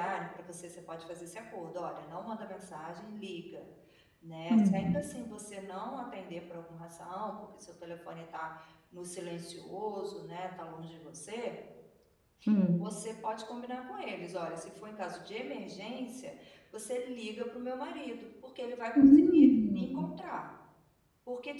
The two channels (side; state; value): both; identical; correlation 1.00